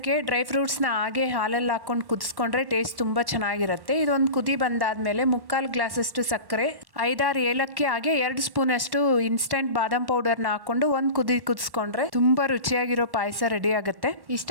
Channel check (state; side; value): late; left; 1.1 ms